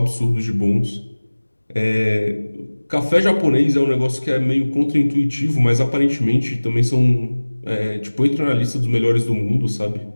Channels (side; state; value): both; inverted; correlation -1.00